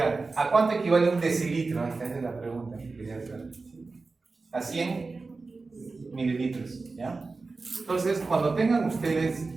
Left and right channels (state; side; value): quieter; left; 3.9 dB